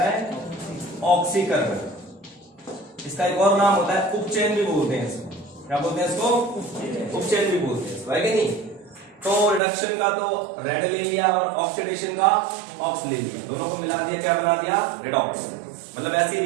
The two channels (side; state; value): left; drops out; at 9.6 s